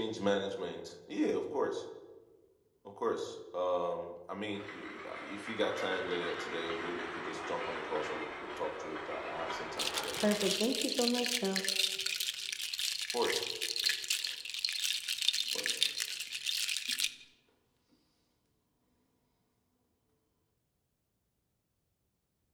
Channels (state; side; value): identical; both; correlation 1.00